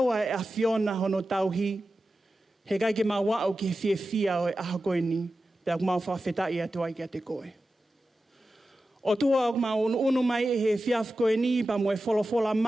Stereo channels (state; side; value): normal; both; correlation 0.93